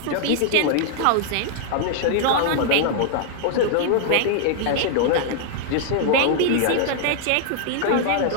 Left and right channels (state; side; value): different; both; correlation -0.01